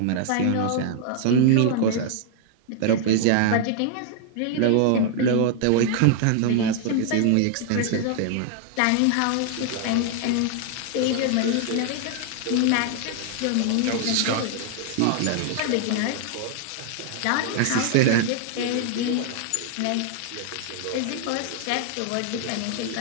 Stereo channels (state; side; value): different; both; correlation 0.00